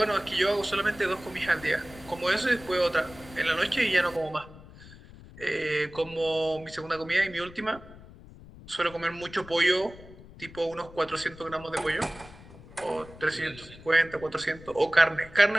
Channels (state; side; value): noise; left; rumble, 19 dB below the sound